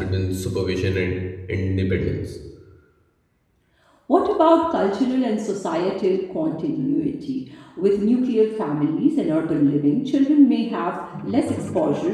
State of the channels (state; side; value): identical; both; correlation 1.00